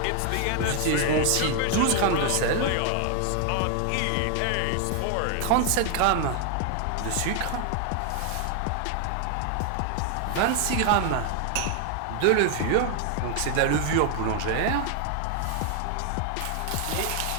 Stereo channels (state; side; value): different; both; correlation 0.00